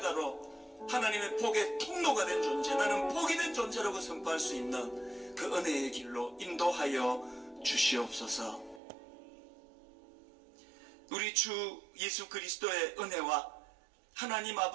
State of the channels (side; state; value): left; drops out; at 8.8 s